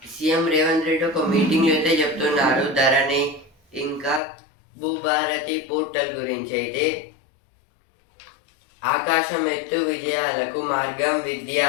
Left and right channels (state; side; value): drops out; right; at 4.2 s